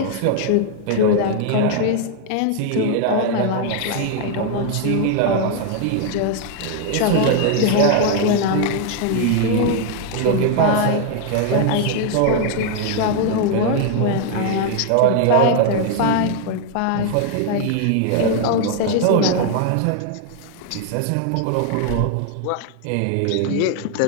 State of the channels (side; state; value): both; different; correlation 0.00